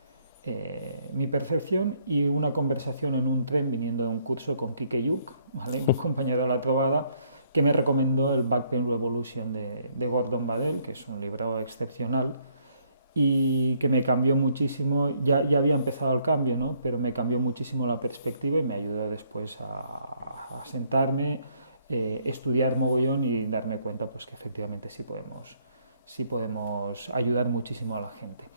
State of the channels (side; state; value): both; inverted; correlation -0.68